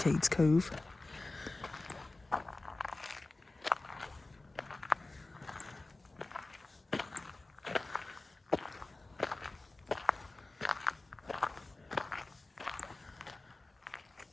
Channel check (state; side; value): quieter; right; 3.1 dB